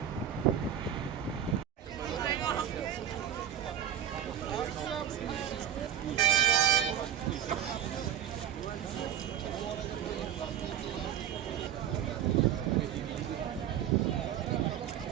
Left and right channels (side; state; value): left; quieter; 10.0 dB